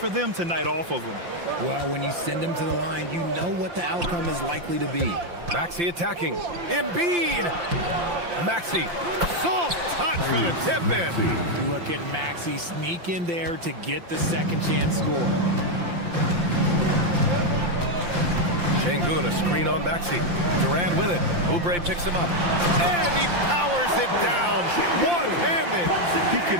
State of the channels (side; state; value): left; late; 5.8 ms